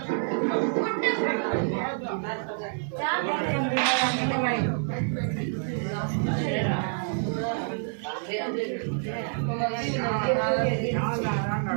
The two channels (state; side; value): silent; left; 60 dB below the other